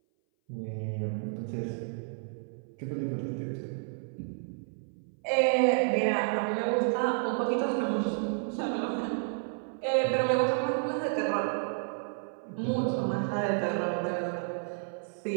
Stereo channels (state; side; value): silent; left; 57 dB below the other